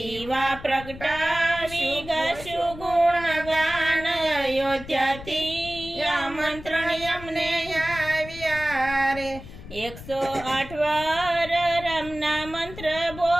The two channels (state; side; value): noise; left; rumble, 14 dB below the sound